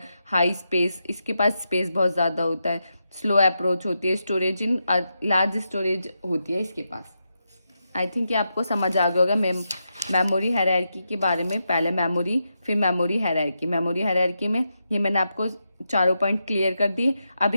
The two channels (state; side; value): inverted; both; correlation -0.86